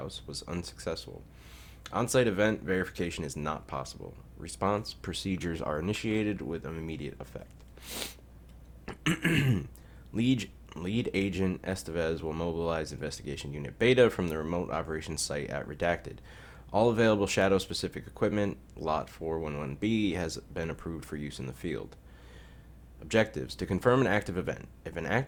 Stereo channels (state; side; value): identical; both; correlation 1.00